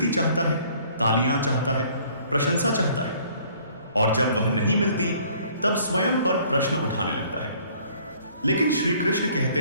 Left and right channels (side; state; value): both; inverted; correlation -0.58